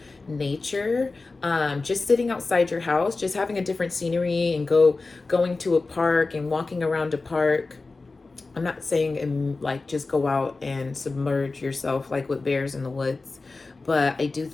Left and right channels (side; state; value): right; quieter; 3.7 dB